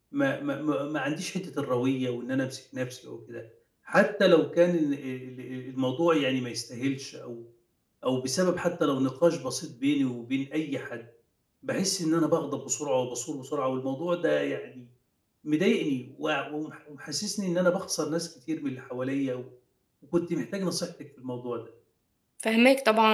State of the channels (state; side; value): identical; both; correlation 1.00